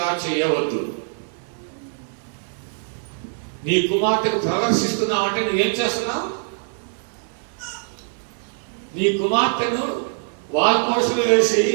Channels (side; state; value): left; silent; digital silence